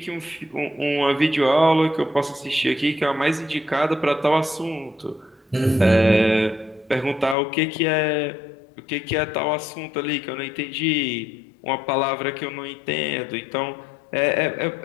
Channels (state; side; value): drops out; right; at 7.4 s